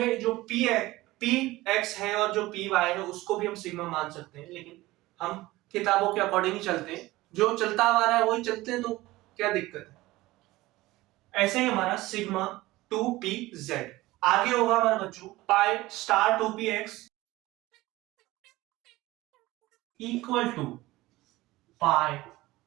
जो p x है और जो py है उसको भी हम सिग्मा मान सकते हैं, लेकिन हम किताबों के अकॉर्डिंग ही चलते हैं, जो चलता आ रहा है वही चलते हैं, तो क्या दिक्कत है? ऐसे ही हमारा सिग्मा 2pz आगे होगा हमारा बच्चों pi star 2px equal to pi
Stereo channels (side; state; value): left; quieter; 18.7 dB